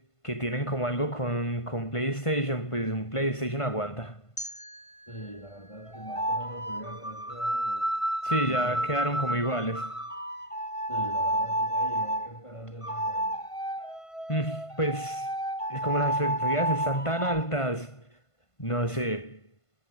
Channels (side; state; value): right; late; 1.5 ms